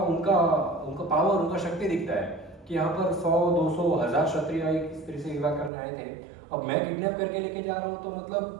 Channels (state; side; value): drops out; left; at 5.7 s